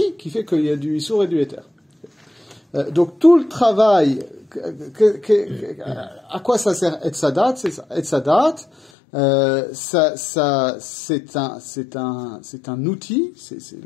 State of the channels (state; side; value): drops out; right; at 8.9 s